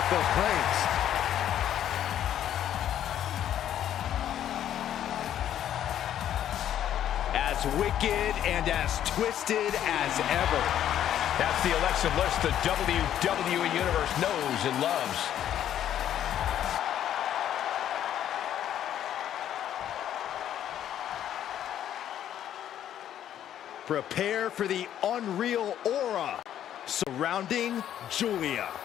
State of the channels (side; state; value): right; quieter; 10.8 dB